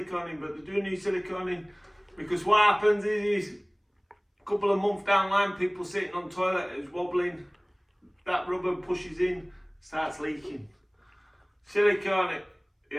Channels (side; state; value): both; identical; correlation 1.00